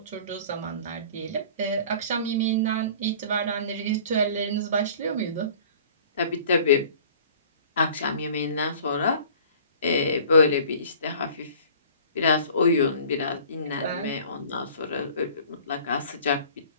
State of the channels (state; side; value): inverted; both; correlation -0.47